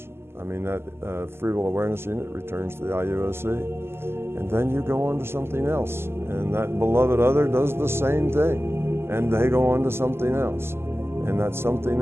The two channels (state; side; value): late; left; 0.12 ms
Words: I mean, that free will awareness unit returns to the IUOC, and then you go on to something else, and that beloved other does the same thing, and they go on to something else, and that something